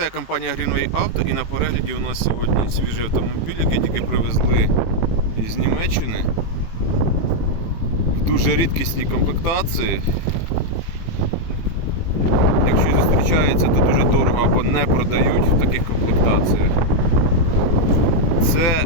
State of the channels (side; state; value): right; late; 18 ms